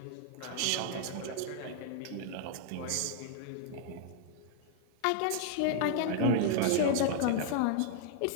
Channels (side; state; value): both; different; correlation -0.01